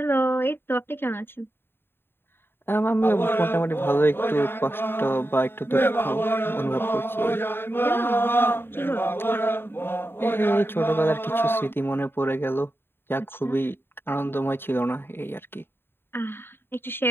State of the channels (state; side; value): late; right; 0.11 ms